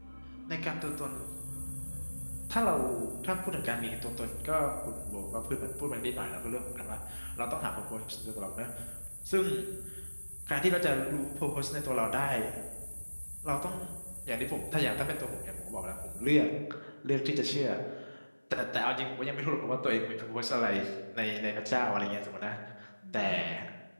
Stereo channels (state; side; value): inverted; both; correlation -1.00